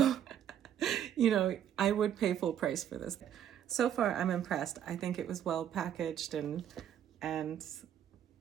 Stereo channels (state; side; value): quieter; left; 10.0 dB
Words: I would pay full price for this. So far, I'm impressed. I think it was well packaged, and